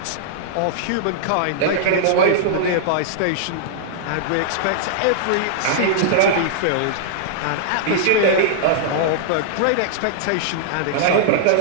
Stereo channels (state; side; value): different; both; correlation -0.01